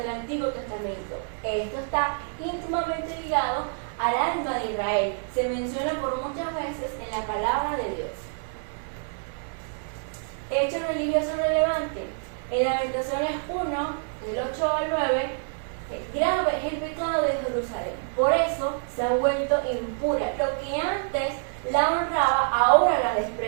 Antiguo Testamento. Esto está íntimamente ligado al alma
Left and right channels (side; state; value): left; silent; 60 dB below the other